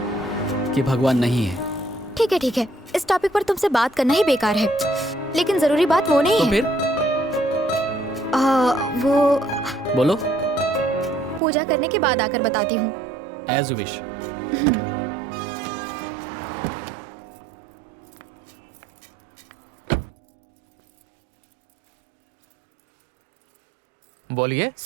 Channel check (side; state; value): left; drops out; at 11.4 s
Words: कि भगवान नहीं है। ठीक है, इस टॉपिक पर तुमसे बात करना ही बेकार है, लेकिन जरूरी बात वो नहीं तो है। फिर? वो बोलो। पूजा करने के बाद आकर बताती हूँ। As you wish. बोलिए।